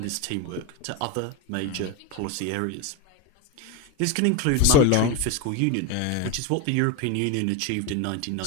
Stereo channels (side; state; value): both; different; correlation 0.03